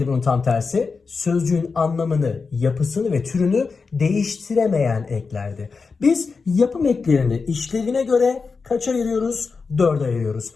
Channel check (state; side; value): quieter; right; 4.7 dB